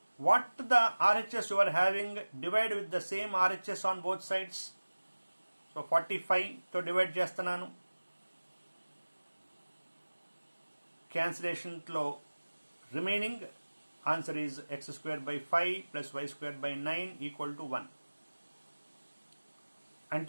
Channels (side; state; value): both; inverted; correlation -1.00